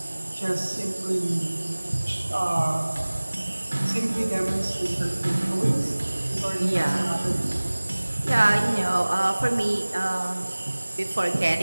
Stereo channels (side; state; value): both; inverted; correlation -1.00